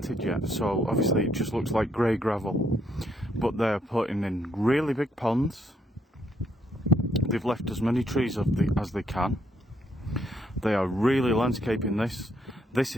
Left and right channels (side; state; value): both; normal; correlation 0.73